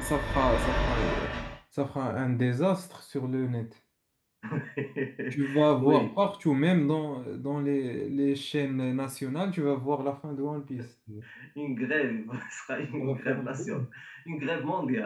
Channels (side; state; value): both; identical; correlation 1.00